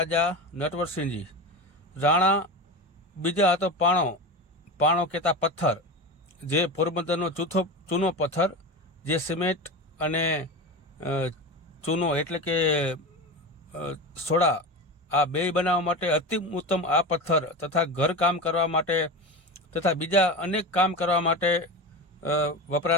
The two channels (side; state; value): both; normal; correlation 0.24